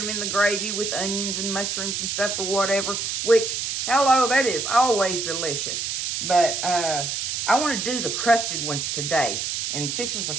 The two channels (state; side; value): noise; right; hiss, 2 dB below the sound